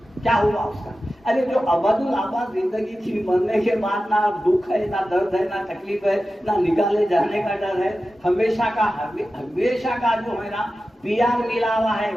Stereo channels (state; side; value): normal; both; correlation 0.94